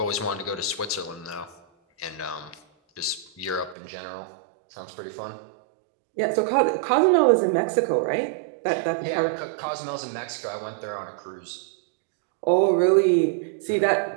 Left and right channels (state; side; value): drops out; left; at 3.8 s